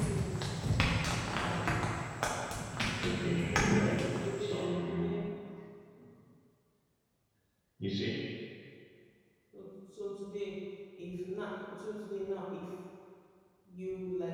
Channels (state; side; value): identical; both; correlation 1.00